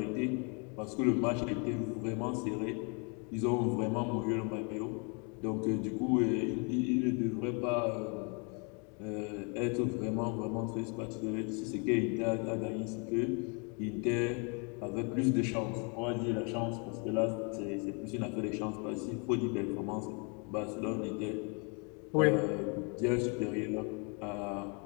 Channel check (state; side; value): quieter; right; 35.2 dB